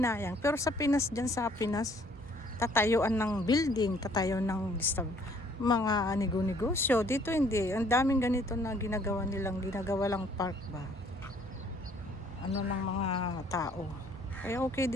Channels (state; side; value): normal; both; correlation 0.61